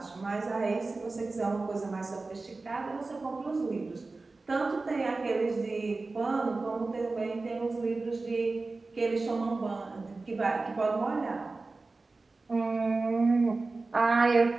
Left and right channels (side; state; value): left; quieter; 3.6 dB